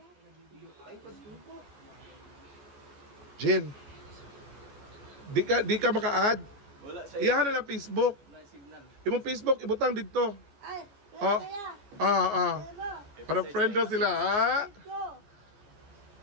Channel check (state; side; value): late; left; 14 ms